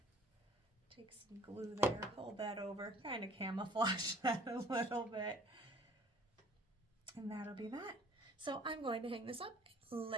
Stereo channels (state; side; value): normal; both; correlation 0.53